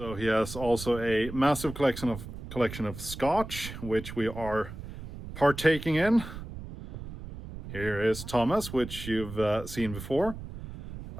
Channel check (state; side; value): noise; right; rumble, 11 dB below the sound